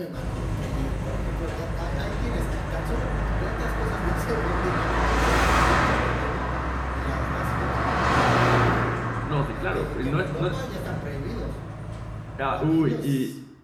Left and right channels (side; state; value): both; identical; correlation 1.00